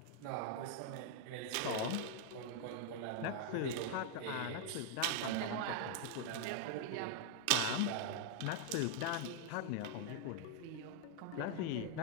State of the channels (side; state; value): both; different; correlation 0.00